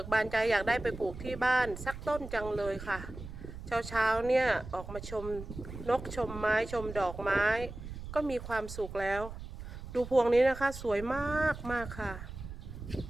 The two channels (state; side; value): noise; right; rumble, 11 dB below the sound